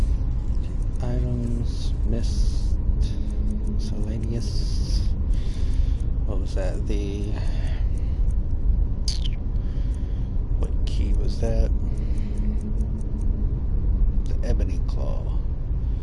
Items, missed, miscellaneous. What was that? What key was that? The ebony claw.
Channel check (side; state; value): both; identical; correlation 1.00